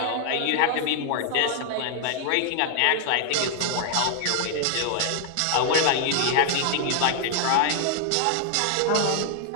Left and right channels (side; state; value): both; different; correlation 0.00